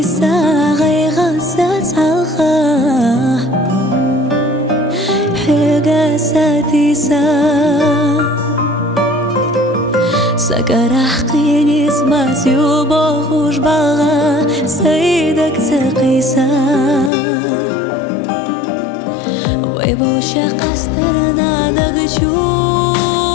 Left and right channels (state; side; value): drops out; right; at 17.1 s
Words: غيغا ساتسالخا حيغا ساتيسا سكرح قيني سماسي وبوخوش باغا سيدك تقيسا ويبو شاق استرنا دقشو